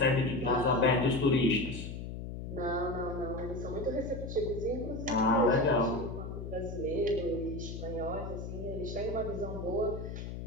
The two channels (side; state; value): left; noise; hum, 7 dB below the sound